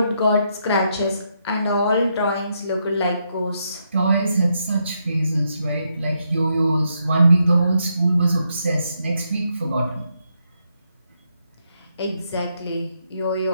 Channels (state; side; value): inverted; both; correlation -0.79